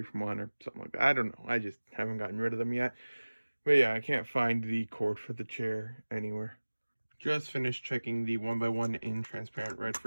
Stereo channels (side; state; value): both; inverted; correlation -1.00